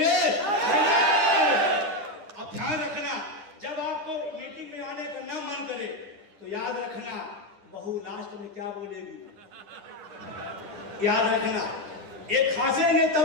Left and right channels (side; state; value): left; late; 10 ms